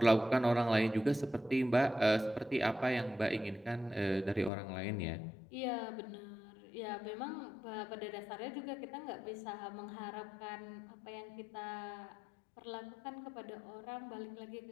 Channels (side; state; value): right; drops out; at 4.5 s